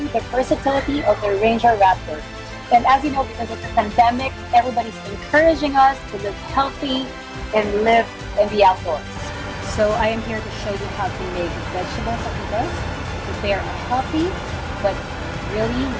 the versatility of the Ranger Raptor. And as you know, because of the pandemic, everybody's encouraging us to live healthy and live in the outdoors. So I am here to show you how to make vegetable fajitas. Prepare a healthy but really,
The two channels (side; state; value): both; identical; correlation 1.00